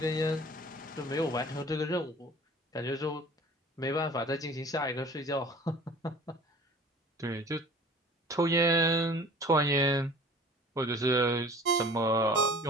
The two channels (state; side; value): normal; both; correlation 0.45